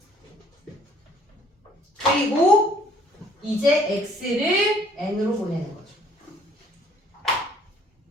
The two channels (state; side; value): normal; both; correlation 0.59